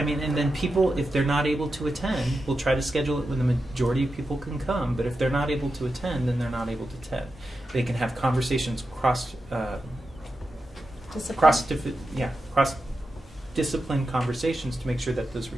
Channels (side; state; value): both; normal; correlation 0.90